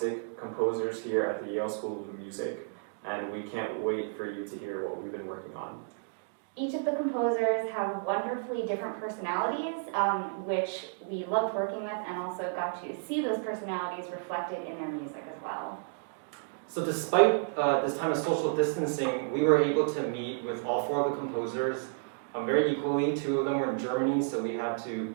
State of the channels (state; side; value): silent; left; digital silence